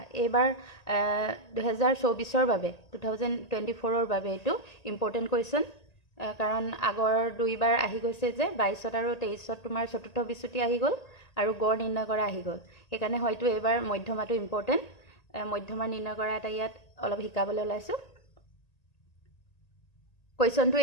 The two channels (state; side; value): late; right; 1.9 ms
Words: এইবাৰ 2024ৰ বাবে 2024ৰ বাবে এটো ইম্পৰ্টেন্ট কোৱেশ্চন কাৰণ আগৰ দুইবাৰ আহি গৈছে যে 22 আৰু 23 তোমাৰ চতুৰ্থ বিচ্যুতি আহি গল আৰু গড় নিৰ্ণয় কৰা আহি গল। সেইকাৰণে হয়তো এবাৰ মধ্যমাটো ইম্পৰ্টেন্ট মধ্যমা নিৰ্ণয় কৰা এটা ইয়াত অলপ শিকাবলৈ ওলাইছো। কোৱেশ্চনটো